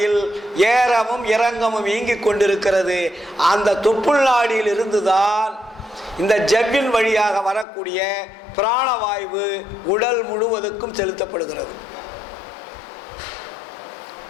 ஏறவும் இறங்கவும் இயங்கிக் கொண்டிருக்கிறது. அந்த தொப்புள் நாடியில் இருந்துதான் இந்த ஜவ்வின் வழியாக வரக்கூடிய பிராணவாயு உடல் முழுவதுக்கும் செலுத்தப்படுகிறது.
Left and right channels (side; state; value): right; drops out; at 7.7 s